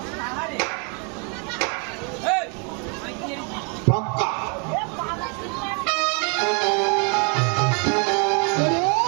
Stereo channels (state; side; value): quieter; left; 35.7 dB